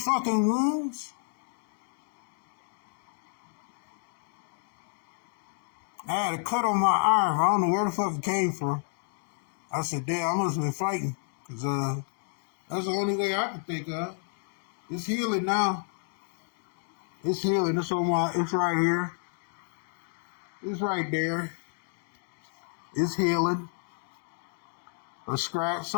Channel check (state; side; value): silent; right; 58 dB below the other